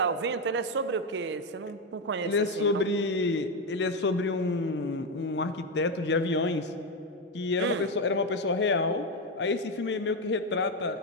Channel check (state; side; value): normal; both; correlation 0.09